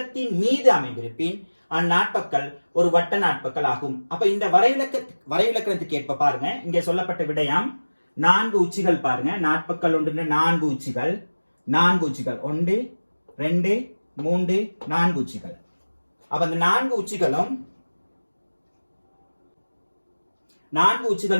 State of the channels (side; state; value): both; inverted; correlation -1.00